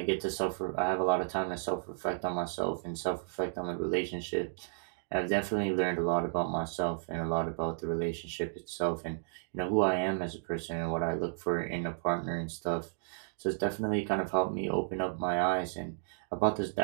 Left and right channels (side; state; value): left; silent; digital silence